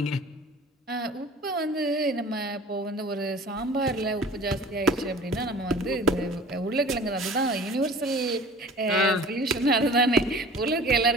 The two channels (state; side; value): normal; both; correlation 0.44